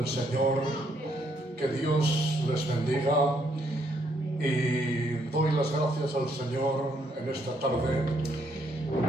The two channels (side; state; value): both; normal; correlation 0.72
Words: Señor. Que Dios les bendiga y doy las gracias al Señor en esta tarde